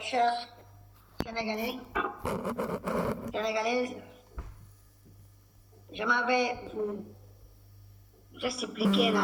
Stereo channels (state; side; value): identical; both; correlation 1.00